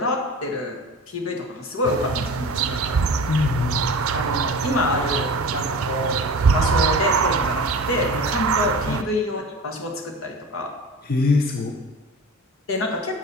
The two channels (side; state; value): both; normal; correlation 0.35